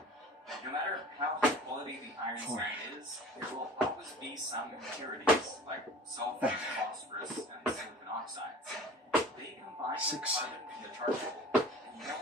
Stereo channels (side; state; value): both; normal; correlation 0.42